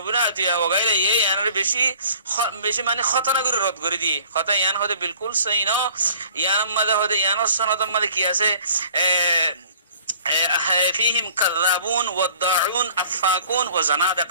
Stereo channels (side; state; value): both; inverted; correlation -0.51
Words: ইবনে আতিয়া ওয়া গায়রিহি ইয়ানের বেশি মানে খতনা করে রদ করে দিয়ে কথা ইয়ান হদে বিলকুল সহি না ইয়ান মধ্যে হদে ইয়ান সনদ মধ্যে কি আছে فيهم كذابون والضاعون افاكون